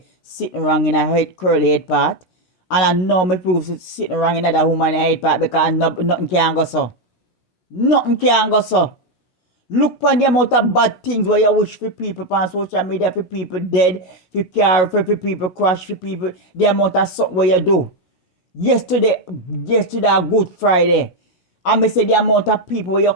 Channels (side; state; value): right; late; 16 ms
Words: sitting wrong in her head, curly head part. And I know me prove sitting wrong in that woman head part because nothing can go so. Nothing can go so. Look on the amount of bad things where you wish for people on social media, for people dead, for car, for people crash, for people, the amount of something where you do. Yesterday, Good Friday, and me say the amount of people where you